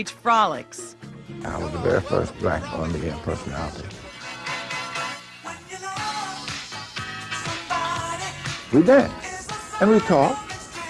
Frolics. I was the very first black on-the-air personality. We danced, and we talked,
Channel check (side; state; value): both; identical; correlation 1.00